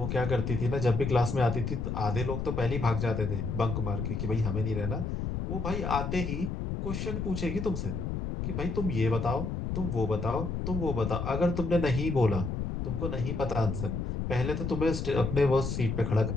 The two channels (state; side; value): noise; left; rumble, 3 dB below the sound